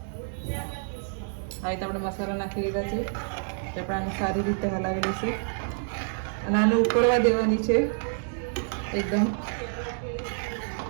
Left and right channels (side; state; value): left; silent; 59 dB below the other